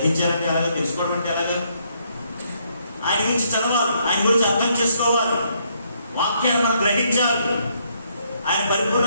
ఎలాగా? తెలుసుకోవడం అంటే ఎలాగా? ఆయన గురించి చదవాలి, ఆయన గురించి అర్థం చేసుకోవాలి, వాక్యాన్ని మనం గ్రహించాలి, ఆయన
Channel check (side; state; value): both; inverted; correlation -0.72